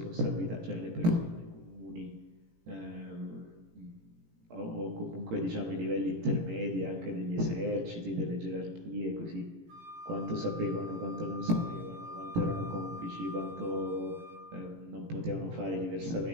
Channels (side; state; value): left; late; 18 ms